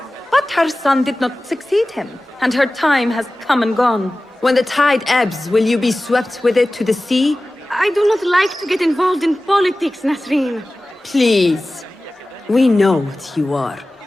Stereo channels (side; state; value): both; normal; correlation 0.97